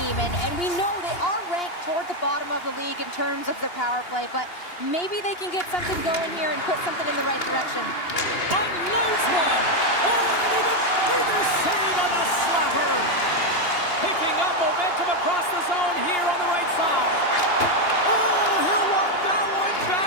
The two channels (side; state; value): right; late; 2.8 ms